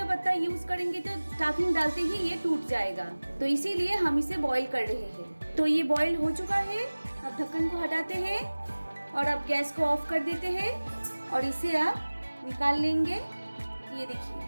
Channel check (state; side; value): inverted; both; correlation -1.00